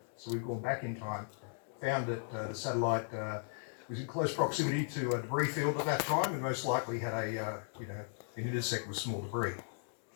So we've gone back in time, found that the satellite was in close proximity to a debris field at that time, and most likely had an intersect with small debris.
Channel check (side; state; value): right; silent; digital silence